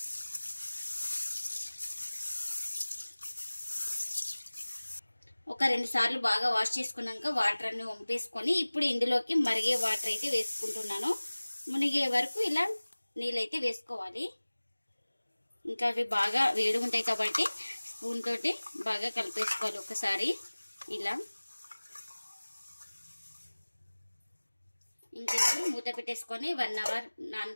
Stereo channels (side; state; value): both; inverted; correlation -1.00